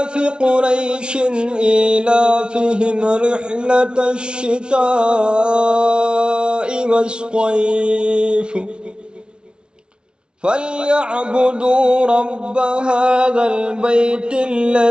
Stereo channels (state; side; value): late; left; 0.056 ms